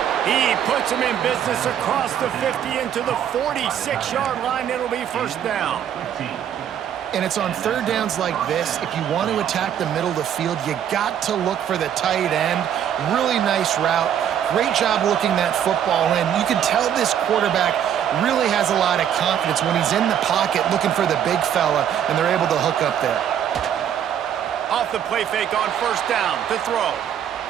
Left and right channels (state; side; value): quieter; left; 9.5 dB